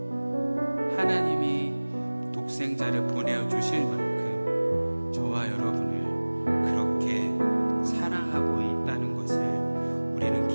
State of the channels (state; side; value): inverted; both; correlation -1.00